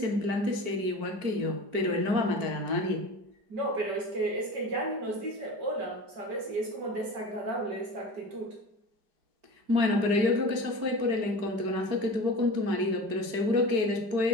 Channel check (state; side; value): late; left; 4.6 ms